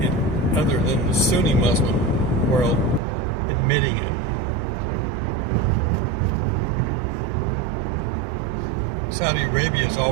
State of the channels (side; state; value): left; drops out; at 3.0 s